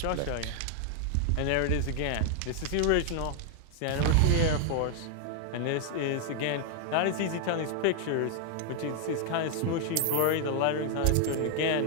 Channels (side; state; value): both; different; correlation 0.00